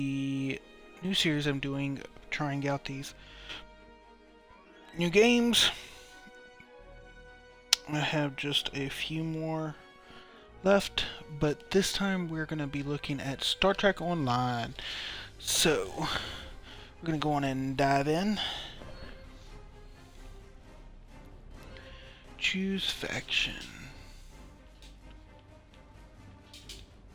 new series I'm doing, trying out these new games. I have just a few more left, but this time we're going to be looking at Star Trek Online. So, we're going to go on and dive in. Choose faction.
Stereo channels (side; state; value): both; identical; correlation 1.00